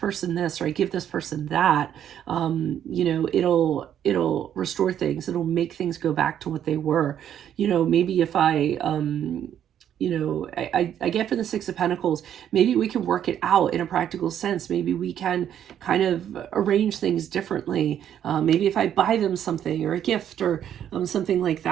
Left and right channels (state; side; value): quieter; left; 10.0 dB